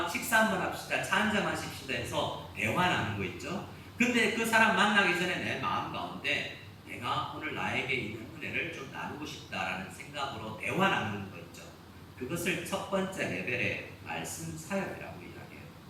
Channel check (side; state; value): both; identical; correlation 1.00